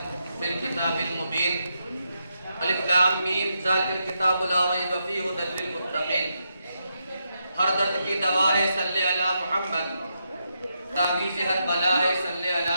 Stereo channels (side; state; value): both; inverted; correlation -0.82